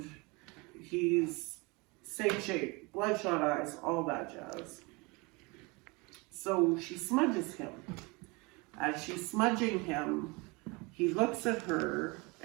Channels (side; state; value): left; quieter; 27.0 dB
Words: he's same shape, bloodshot eyes, all that jazz. So she smudges him. As she's smudging him, he looks at her,